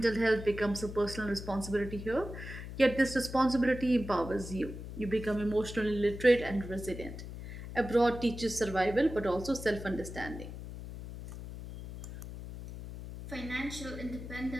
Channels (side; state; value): left; noise; hum, 10 dB below the sound